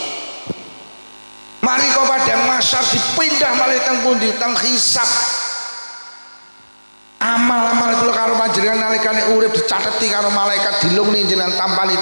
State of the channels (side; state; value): both; inverted; correlation -1.00